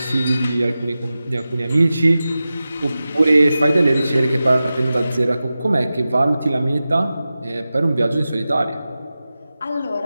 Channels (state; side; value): inverted; both; correlation -0.94